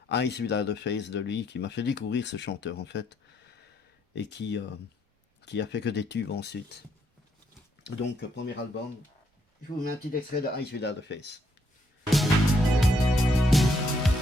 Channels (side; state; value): both; normal; correlation 0.73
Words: Eyes Without a Face de lui, qui m'a fait découvrir ce chanteur en fait, et qui a fait que des tubes ensuite. Donc, premier album, je vous mets un petit extrait de Eyes Without a Face.